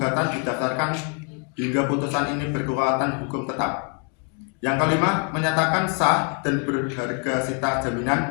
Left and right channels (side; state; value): right; quieter; 39.6 dB